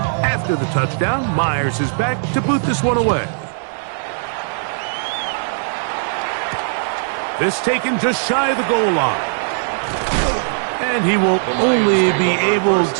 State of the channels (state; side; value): silent; left; digital silence